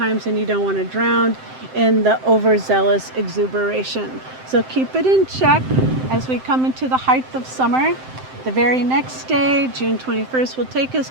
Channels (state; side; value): late; left; 7.7 ms